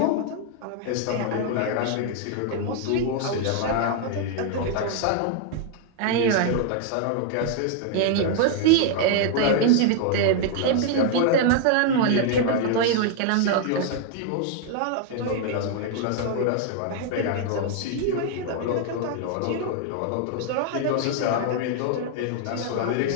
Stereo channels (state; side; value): different; both; correlation 0.00